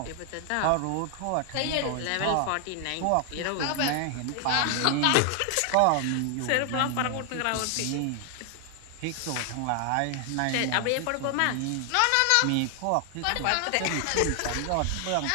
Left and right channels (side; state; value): both; different; correlation 0.00